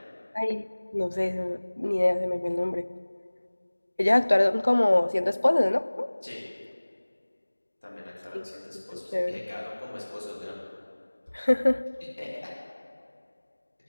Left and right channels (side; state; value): both; inverted; correlation -1.00